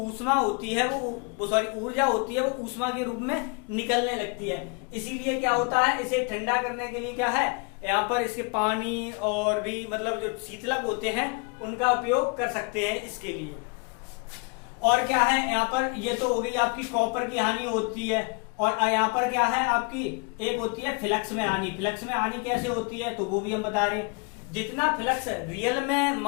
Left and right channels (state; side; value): quieter; right; 33.7 dB